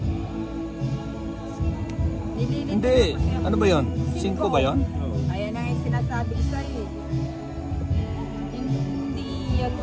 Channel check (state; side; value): identical; both; correlation 1.00